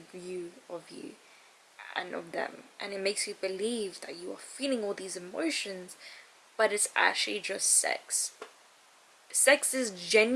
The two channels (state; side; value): identical; both; correlation 1.00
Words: view of you and of them, and it makes you believe that you are feeling all these emotions, but it's actually just sex. Sex is